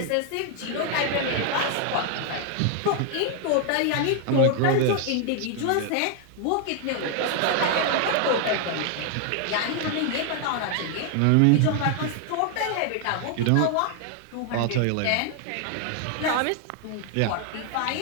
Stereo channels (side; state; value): both; different; correlation 0.00